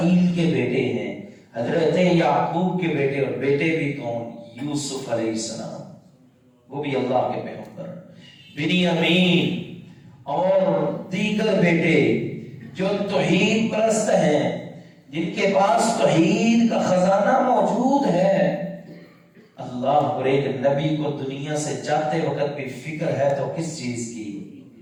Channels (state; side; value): identical; both; correlation 1.00